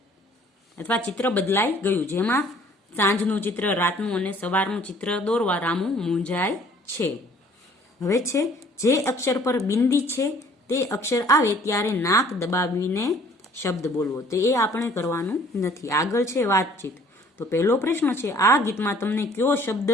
અથવા ચિત્ર બદલાઈ ગયું, જેમાં સાંજનું ચિત્ર, રાતનું અને સવારનું ચિત્ર દોરવા રામુ મૂંઝાય છે. હવે છે જે અક્ષર પર બિંદી છે તે અક્ષર આવે ત્યારે નાક દબાવીને શબ્દ બોલવો. તો એ આપણે કરવાનું નથી. આગળ છે વાતચીત. તો પહેલો પ્રશ્ન છે, આ ગીતમાં તમને કયો શબ્દ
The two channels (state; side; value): normal; both; correlation 0.56